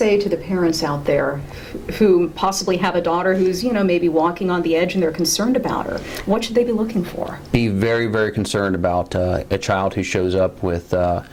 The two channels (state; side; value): identical; both; correlation 1.00